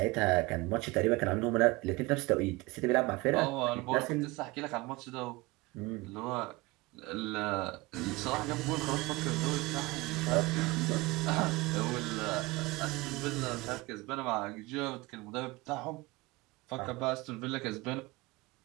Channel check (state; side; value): quieter; left; 22.7 dB